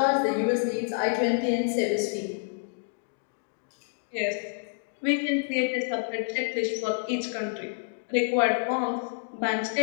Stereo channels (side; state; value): right; silent; digital silence